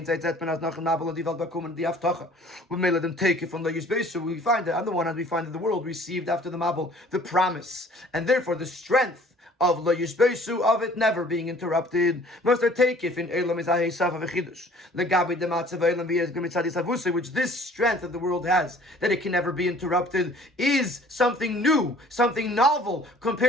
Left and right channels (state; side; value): normal; both; correlation 0.52